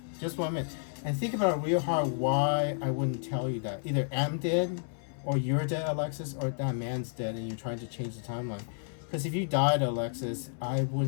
Just 1 minute. And think about it real hard why I wouldn't tell you that. Either I'm dead, or you're dead, Alexis, or that man's dead and you're trying to change the timeline. Because if you died, Alexis, I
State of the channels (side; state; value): right; silent; 57 dB below the other